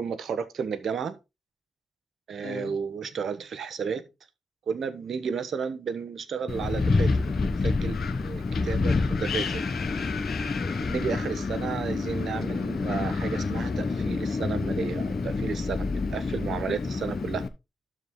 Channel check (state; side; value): normal; both; correlation 0.83